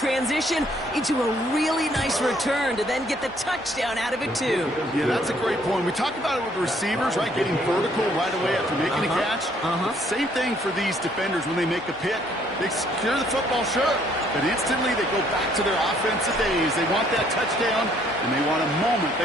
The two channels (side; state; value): both; normal; correlation 0.65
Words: into a really nice return to then get the touchdown out of it, too? Yeah, that's a great point. We talk about it with the receivers, right? Getting vertical right away after making a catch. Same thing for these defenders when they make a pick. They secure the football, sure, but instantly they go back to their offensive days. They want that touchdown, and they want a moment